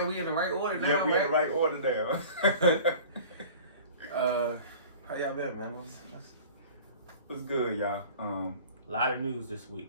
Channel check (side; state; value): both; inverted; correlation -0.42